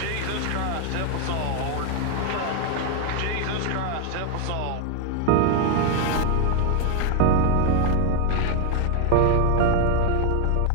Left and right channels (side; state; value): both; different; correlation 0.00